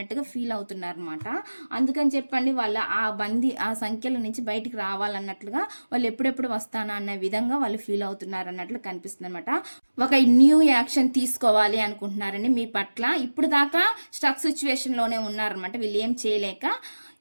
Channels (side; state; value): both; inverted; correlation -1.00